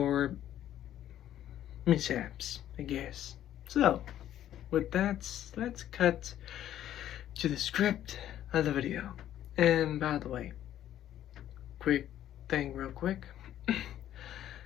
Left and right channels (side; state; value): right; quieter; 11.7 dB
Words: mishaps, I guess. So, with that, let's cut to the script of the video. And by the way, quick thing real quick.